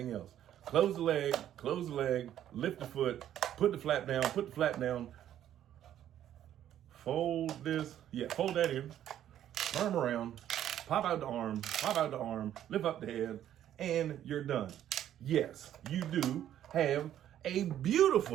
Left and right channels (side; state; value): left; quieter; 11.2 dB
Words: else. Close the leg, lift the foot, put the flap down, fold this, fold that in, turn around, pop out the arm, lift up the head, and you're done. Yes, you do have a